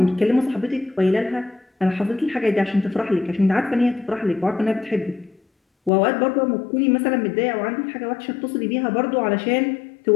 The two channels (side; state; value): right; drops out; at 5.9 s